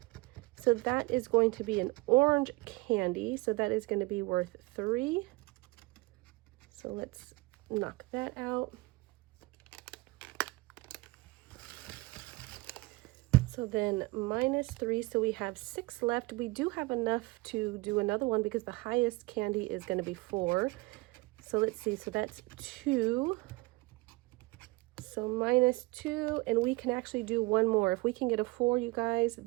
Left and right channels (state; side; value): quieter; left; 23.3 dB